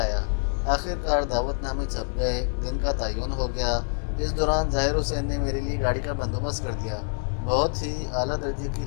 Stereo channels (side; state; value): right; silent; 59 dB below the other